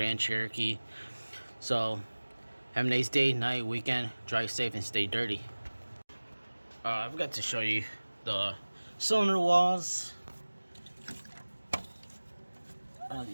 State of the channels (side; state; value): both; inverted; correlation -1.00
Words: Cherokee. So have a nice day, night, weekend. Drive safe and stay dirty. I forgot to show you the cylinder walls. I don't know if